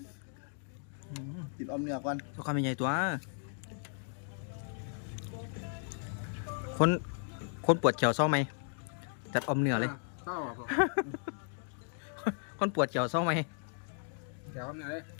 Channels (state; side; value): silent; right; 54 dB below the other